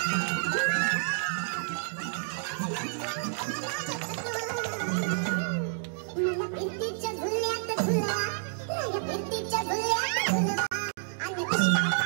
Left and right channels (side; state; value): left; silent; digital silence